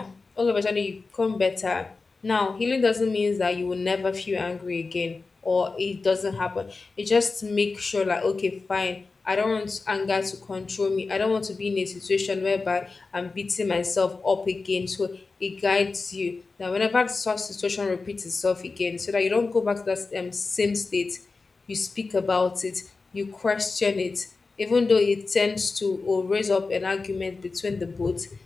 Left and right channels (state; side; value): quieter; right; 4.0 dB